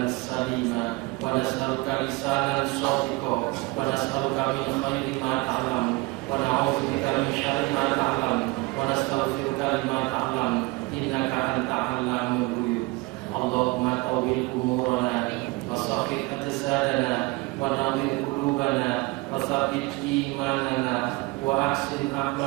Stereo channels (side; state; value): left; quieter; 23.6 dB